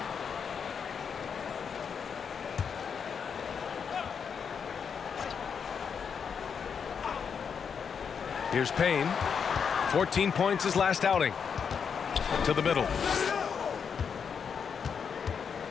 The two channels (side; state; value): right; quieter; 6.7 dB